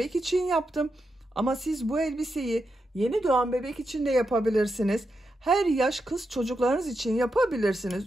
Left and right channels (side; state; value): both; normal; correlation 0.86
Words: için yaptım. Ama siz bu elbiseyi yeni doğan bebek için de yapabilirsiniz. Her yaş kız çocuklarınız için yapabilirsiniz.